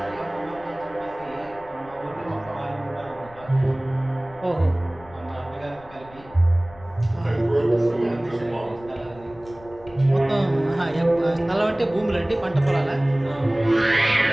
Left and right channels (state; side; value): noise; left; rumble, 22 dB below the sound